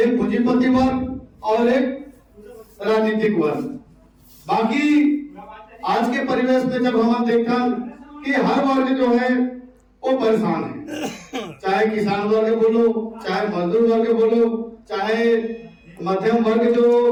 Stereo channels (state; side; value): identical; both; correlation 1.00